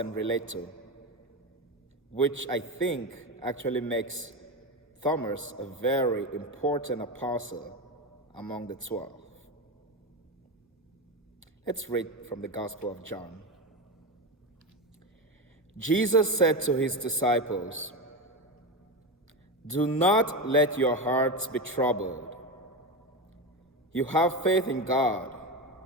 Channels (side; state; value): both; normal; correlation 0.19